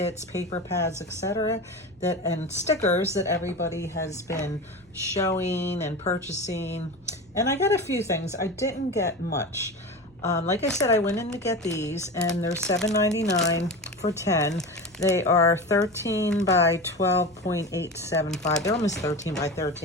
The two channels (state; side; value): noise; left; hum, 30 dB below the sound